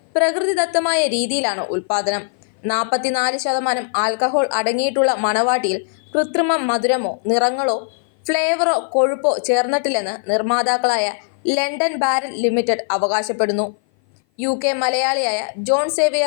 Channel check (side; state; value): right; silent; 57 dB below the other